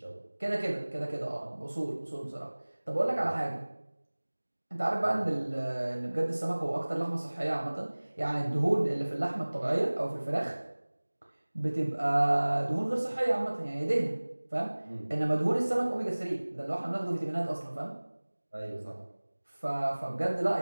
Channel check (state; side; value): inverted; both; correlation -1.00